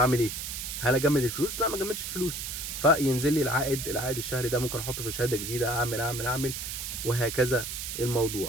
ايه؟ هل اجمد الفلوس؟ لا، ما اجمدش الفلوس. فينزل لي العائد الشهري ده، ممكن احطه في شهاده جديده، اعمل وهكذا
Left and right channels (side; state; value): right; noise; hiss, 5 dB below the sound